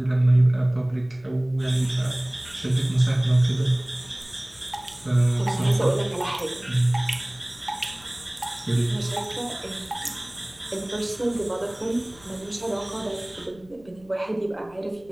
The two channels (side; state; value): left; noise; rumble, 26 dB below the sound